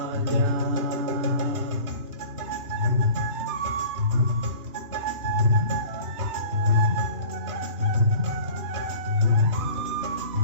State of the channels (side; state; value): left; late; 3.1 ms